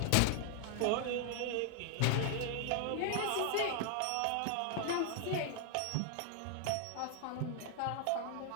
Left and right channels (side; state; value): both; different; correlation 0.00